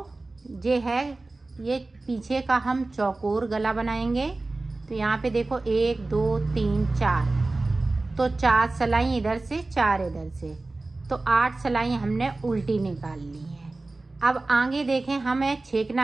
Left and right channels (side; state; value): left; quieter; 3.2 dB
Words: ये है, ये पीछे का हम चौकोर गला बनाएंगे। तो यहाँ पे देखो 1 2 3 4, तो 4 सिलाई इधर से 4 इधर से, तो 8 सिलाई हमने उल्टी निकाल ली है। अब आगे देखें हमें